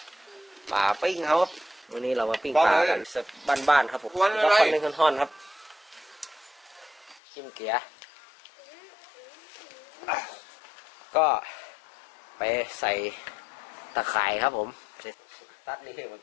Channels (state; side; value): drops out; right; at 7.2 s